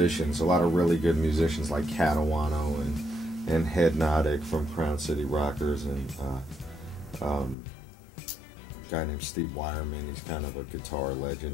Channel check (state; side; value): drops out; right; at 7.6 s